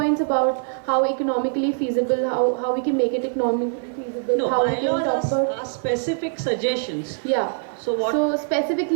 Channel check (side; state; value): left; silent; 63 dB below the other